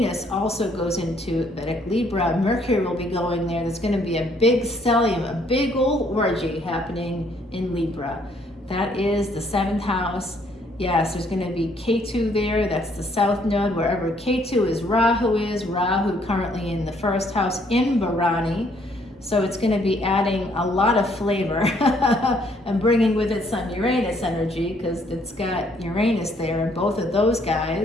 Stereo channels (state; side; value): normal; both; correlation 0.66